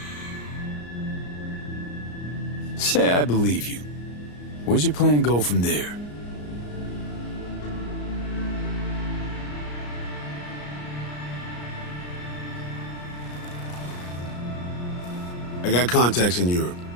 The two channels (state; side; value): late; right; 34 ms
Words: Say I believe you. Where's your plan go from there? I got contacts in Europe.